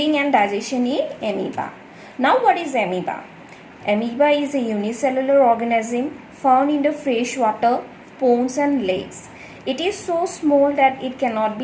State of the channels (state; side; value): identical; both; correlation 1.00